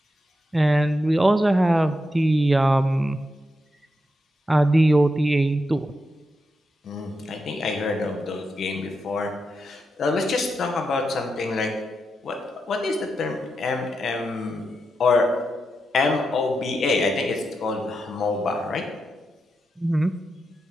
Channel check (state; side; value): normal; both; correlation 0.86